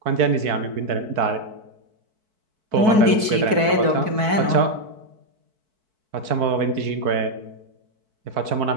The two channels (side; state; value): left; late; 4.6 ms